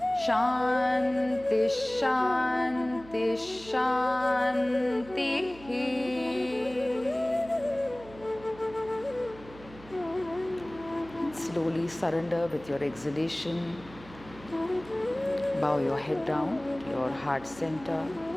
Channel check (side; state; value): right; noise; hum, 20 dB below the sound